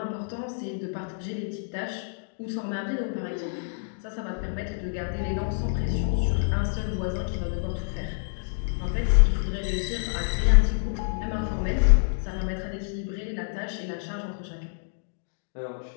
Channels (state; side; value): silent; right; digital silence